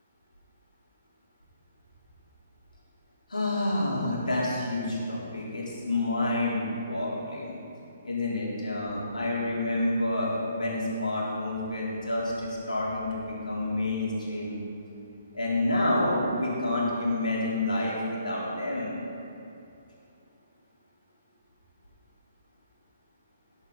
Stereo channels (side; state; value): both; inverted; correlation -0.73